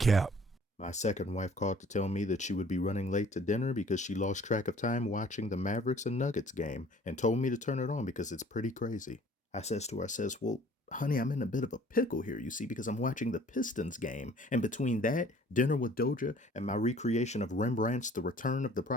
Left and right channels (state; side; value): normal; both; correlation 0.53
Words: My second wife called to tell me that she would be running late to dinner because she lost track of time watching the Mavericks and Nuggets game and told me to turn it on because it's pretty crazy. I says to her, well, honey, I'm in a bit of a pickle here, you see, because I'm watching the Pistons game. And between that, dinner with Doja, and my recreation of Rembrandt's The Return of the